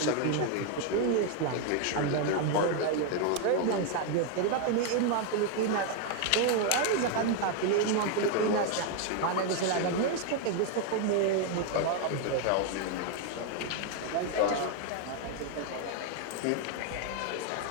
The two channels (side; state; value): both; different; correlation 0.01